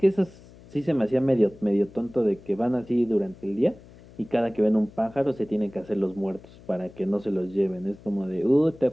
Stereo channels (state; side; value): noise; left; hum, 22 dB below the sound